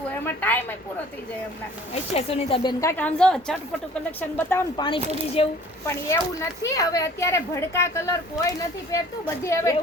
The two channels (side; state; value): both; normal; correlation 0.50